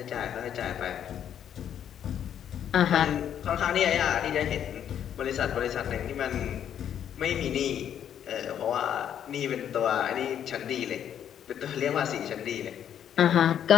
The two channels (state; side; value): quieter; right; 9.5 dB